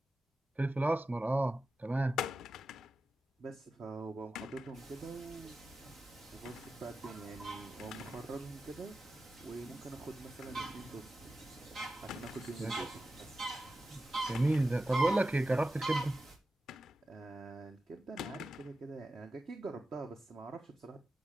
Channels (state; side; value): normal; both; correlation 0.92